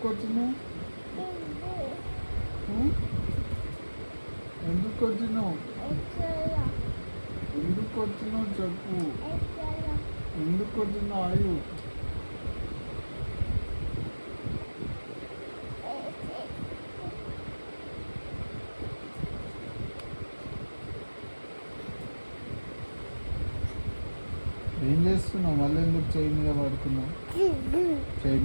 వచ్చినావు? ఎందుకు వచ్చినావు? ఎందుకు వచ్చినావు చెప్పు. ఎందుకు వచ్చినావు ఆయు? ఏం చేస్తున్నావు? మళ్ళీ ఎందుకు చెయ్యి మీద పడుకున్నావు? చెయ్యి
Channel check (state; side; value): inverted; both; correlation -1.00